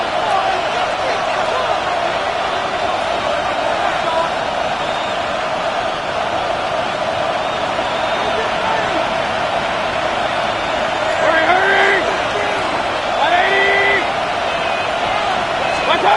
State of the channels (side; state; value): both; identical; correlation 1.00